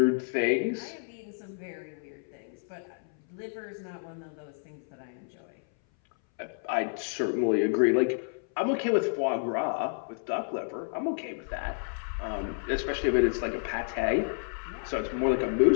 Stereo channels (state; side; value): silent; right; 58 dB below the other